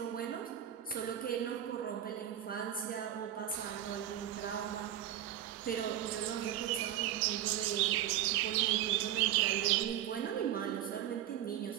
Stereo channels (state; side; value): quieter; left; 11.5 dB